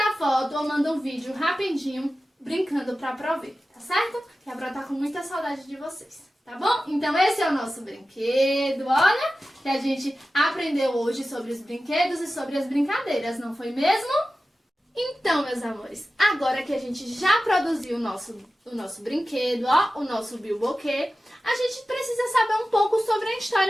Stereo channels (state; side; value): normal; both; correlation 0.94